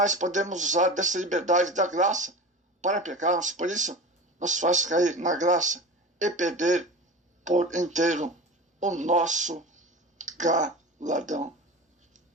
podemos usar dessa liberdade da graça para pecarmos. Por isso, nos faz cair na graça e perder por inteiro o nosso galardão.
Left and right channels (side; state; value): both; normal; correlation 0.32